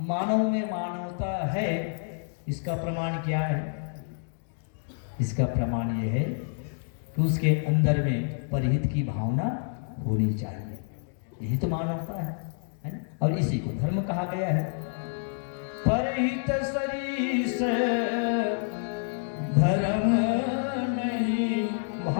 में मानवता है, इसका प्रमाण क्या है? इसका प्रमाण यह है कि उसके अंदर में परहित की भावना होनी चाहिए। यही तो मानवता है ना? और इसी को धर्म कहा गया है। परहित सरीस धर्म नहीं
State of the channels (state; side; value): silent; right; digital silence